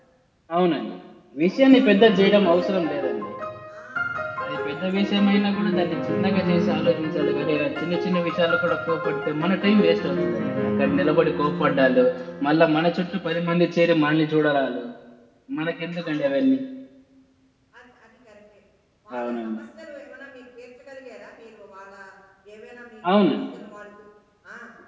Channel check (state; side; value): identical; both; correlation 1.00